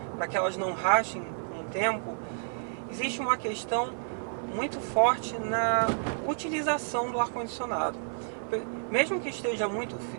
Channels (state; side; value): silent; left; 56 dB below the other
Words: para que elas não rachem com o tempo, existe uma questão muito forte na utilização do ar-condicionado. Mesmo que esteja muito